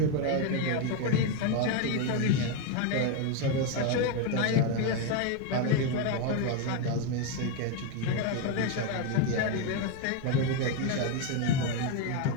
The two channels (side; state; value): both; different; correlation 0.02